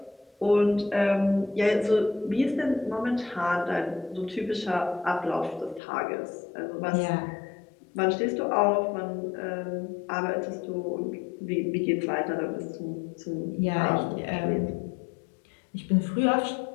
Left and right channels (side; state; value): right; drops out; at 5.8 s